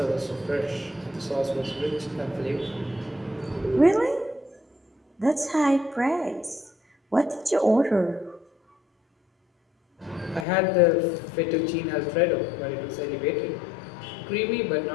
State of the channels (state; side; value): drops out; right; at 10.5 s